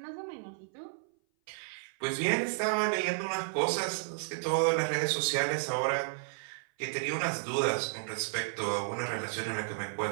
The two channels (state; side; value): silent; left; 56 dB below the other